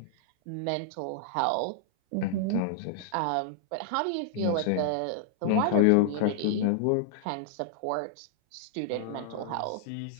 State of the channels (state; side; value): different; both; correlation -0.01